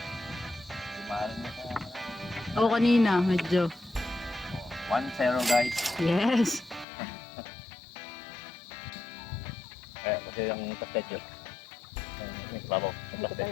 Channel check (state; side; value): drops out; right; at 6.9 s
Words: Mahal mo ka. Oo, kanina, medyo. 1-0 guys. Yes. Kasi yung kastet yun. Nagbabaw sa